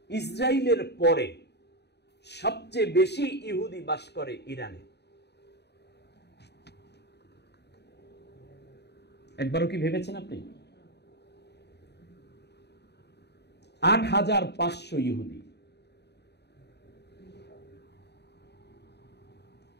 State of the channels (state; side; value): late; right; 0.49 ms